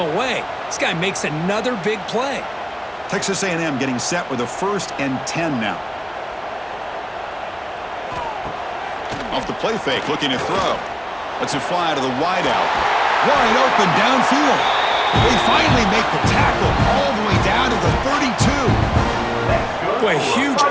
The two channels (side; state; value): both; identical; correlation 1.00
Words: This guy makes another big play. Texas A&M getting set with a 1st and 10 now. Off the play fake, looking to throw. Lets it fly to the wideout. Wide open downfield. They finally make the tackle all the way down to the 32. Boy, huge